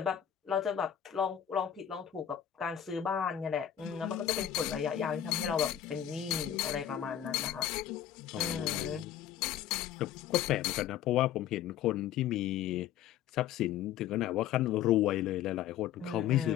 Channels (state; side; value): quieter; right; 10.4 dB